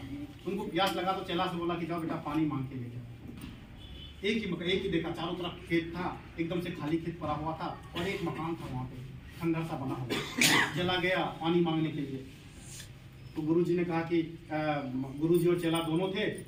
लगा तो चेला से बोला कि जाओ बेटा पानी मांग के लेके। एक ही देखा, चारों तरफ खेत था, एकदम से खाली खेत भरा हुआ था और एक मकान था वहाँ पे खंडर सा बना हुआ। चला गया पानी मांगने के लिए, तो गुरुजी ने कहा कि गुरुजी और चेला दोनों थे,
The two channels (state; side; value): identical; both; correlation 1.00